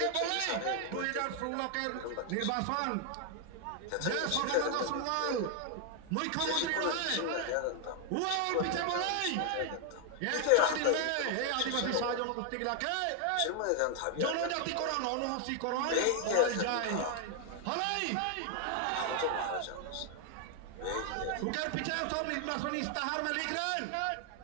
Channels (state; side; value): different; both; correlation 0.00